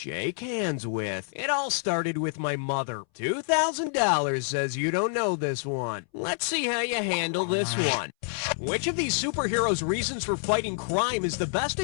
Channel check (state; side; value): silent; right; 60 dB below the other